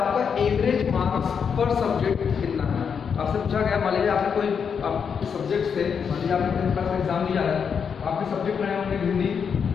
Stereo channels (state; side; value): quieter; right; 6.7 dB